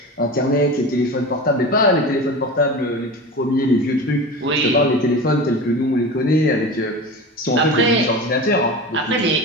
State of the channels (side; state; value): both; normal; correlation 0.30